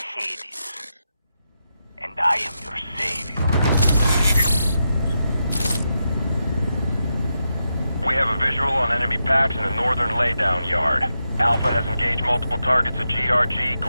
and I am your savior. We have a visual on enemy packs in the northern laydown yard. Alpha has engaged multiple targets at GRG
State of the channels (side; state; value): both; inverted; correlation -0.86